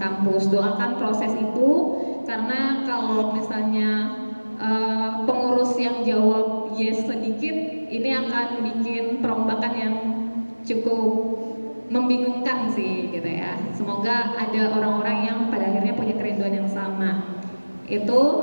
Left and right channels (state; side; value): inverted; both; correlation -1.00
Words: Doakan proses itu, karena kalau misalnya pengurus yang jawab yes sedikit, ini akan bikin perombakan yang cukup membingungkan sih gitu ya. Semoga ada orang-orang yang pada akhirnya punya kerinduan yang sama.